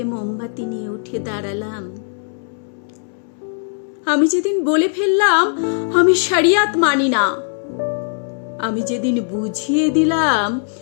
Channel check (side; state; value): right; silent; 66 dB below the other